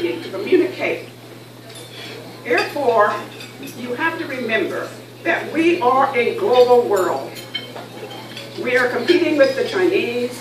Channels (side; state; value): both; identical; correlation 1.00